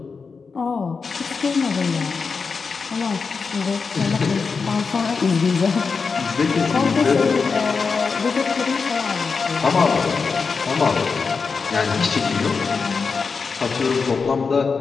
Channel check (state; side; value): quieter; right; 5.0 dB